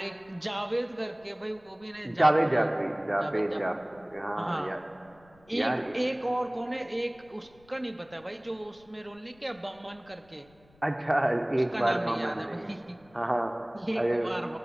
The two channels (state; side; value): noise; left; rumble, 29 dB below the sound